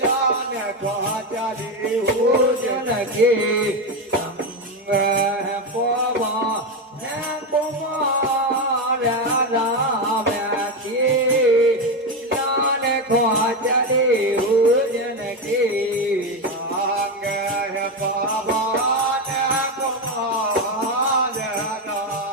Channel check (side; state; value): both; normal; correlation 0.11